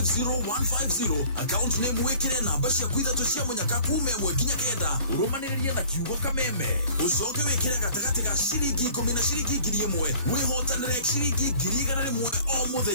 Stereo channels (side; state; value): both; inverted; correlation -0.50